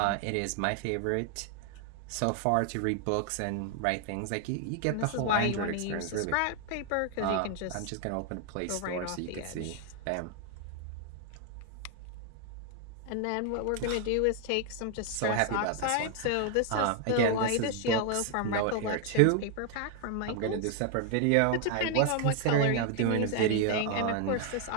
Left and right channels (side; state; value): both; different; correlation 0.00